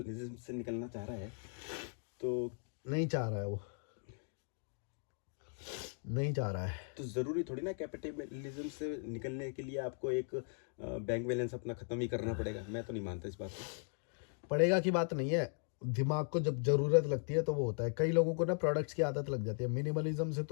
से निकलना चाह रहा है, तो नहीं चाह रहा है वो, नहीं चाह रहा है। तो ज़रूरी थोड़ी ना कैपिटलिज्म से निकलने के लिए आपको एक बैंक बैलेंस अपना ख़त्म ही करना पड़ेगा। मैं तो नहीं मानता इस बात को। पड़ेगा की बात नहीं है, दिमाग को जब ज़रूरत लगती है तो वो होता है। कई लोगों को ना प्रोडक्ट्स की आदत लग जाती है। मिनिमलिज्म से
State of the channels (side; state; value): right; silent; 52 dB below the other